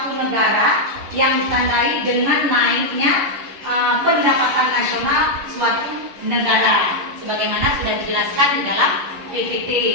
negara yang ditandai dengan naiknya pendapatan nasional suatu negara, sebagaimana sudah dijelaskan di dalam PPT,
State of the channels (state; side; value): late; left; 11 ms